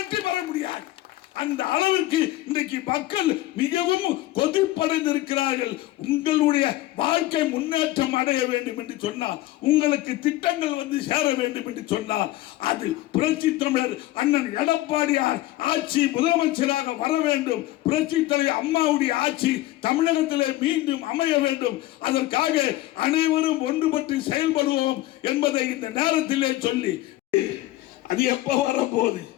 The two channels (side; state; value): right; quieter; 16.5 dB